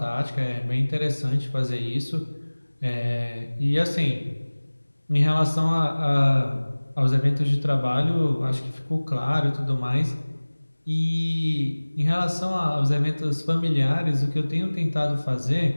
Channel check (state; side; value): inverted; both; correlation -1.00